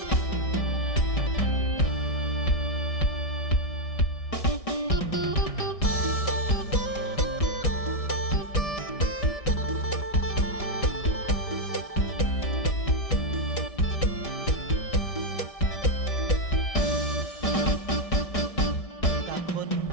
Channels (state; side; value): late; right; 1.6 ms